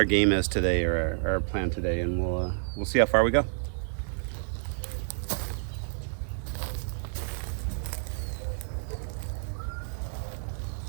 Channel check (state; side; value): silent; left; digital silence